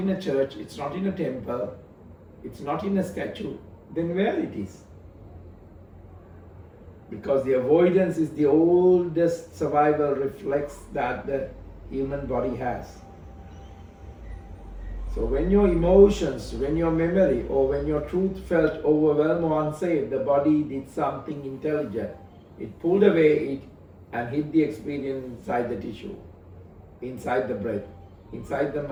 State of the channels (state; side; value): identical; both; correlation 1.00